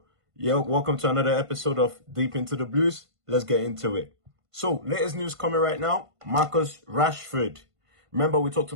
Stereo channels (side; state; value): left; late; 1.5 ms